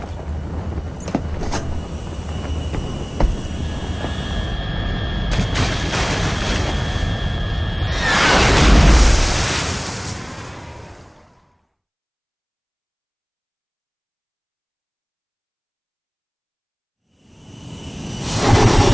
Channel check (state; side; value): identical; both; correlation 1.00